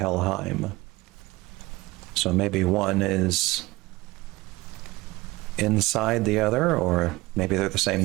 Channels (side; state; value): left; quieter; 20.7 dB